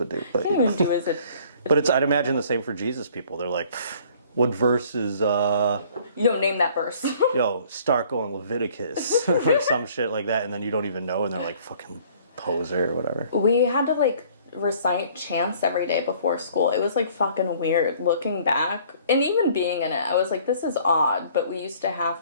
do. But, Can't even do is it. But I'd imagine the same for Jesus people. They're like, what verse is, You don't name that verse. yo, start going Leviticus or some shit like that, and then you don't even know, and they're like, fucking poser or whatever. We had to like recite chants every day before school. It was like fucking weird looking back. And even being in it, I was like, this is odd, but we used to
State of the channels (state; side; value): inverted; both; correlation -0.56